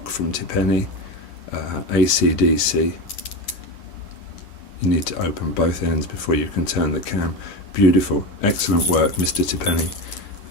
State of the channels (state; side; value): late; right; 9.7 ms